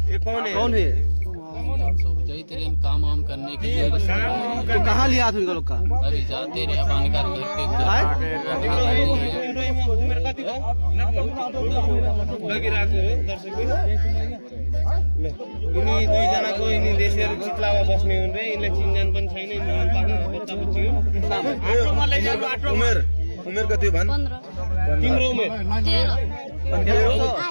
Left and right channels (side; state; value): both; inverted; correlation -1.00